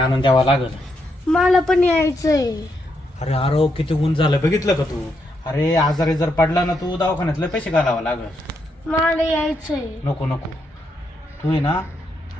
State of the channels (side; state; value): both; normal; correlation 0.79